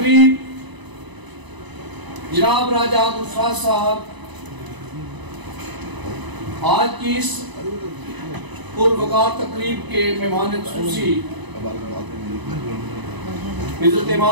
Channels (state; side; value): late; left; 1.0 ms